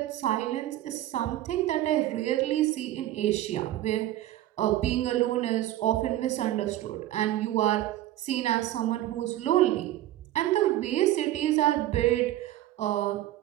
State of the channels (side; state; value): left; quieter; 14.1 dB